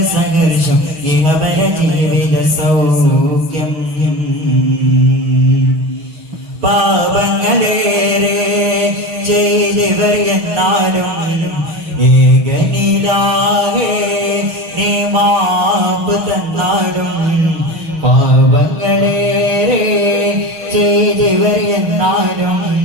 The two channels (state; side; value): late; left; 6.3 ms